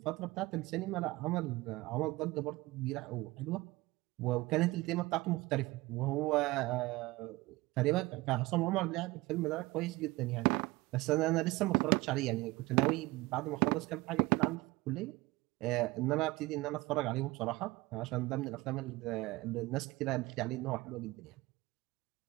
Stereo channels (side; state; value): left; quieter; 20.7 dB